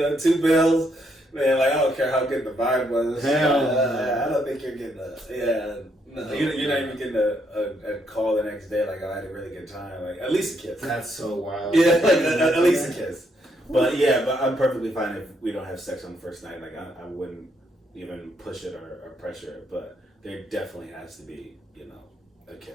2 bills. Man, like, I don't care how good the vibe was. I don't think you're getting you're not even getting a call the next day, like, oh, I had a really good time. Like, at least a kiss. That's so wild. Yeah, like, at least a kiss. But I'm perfectly fine if we don't have sex on the first night. Like, I wouldn't even push it or pressure it. But there definitely has to be, you know, a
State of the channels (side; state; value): both; normal; correlation 0.75